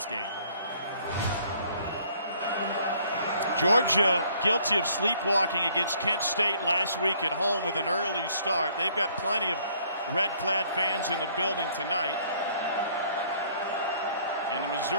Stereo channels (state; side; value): inverted; both; correlation -0.61